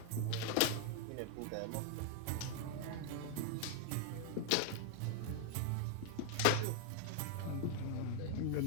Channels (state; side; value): different; both; correlation 0.00